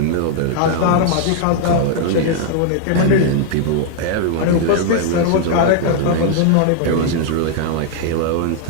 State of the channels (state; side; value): different; both; correlation -0.01